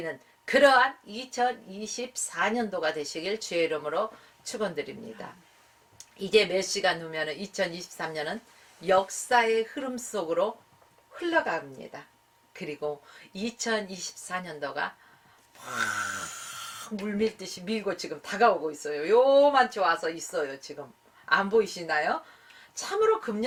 그러한 2024년도가 되시길 주의 이름으로 축원드립니다. 이제 몇 시간 후면 2023년은 역사의 흐름 속으로 흘러갑니다. 그리고 2024년도가 물밀듯이 밀고 지금 다가오고 있어요. 요만치 와서 있어요. 지금 안 보이시나요? 참으로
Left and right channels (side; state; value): both; identical; correlation 1.00